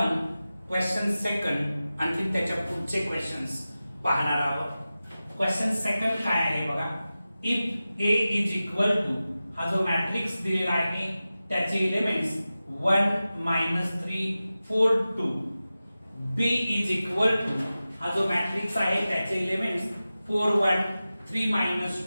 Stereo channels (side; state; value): both; inverted; correlation -0.95